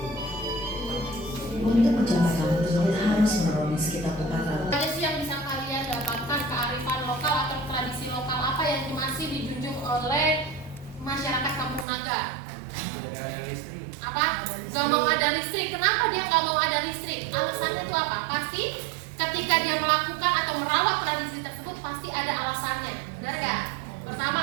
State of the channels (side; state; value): left; drops out; at 11.9 s